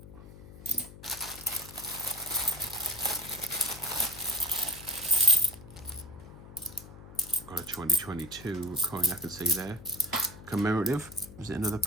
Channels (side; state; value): left; noise; hum, 18 dB below the sound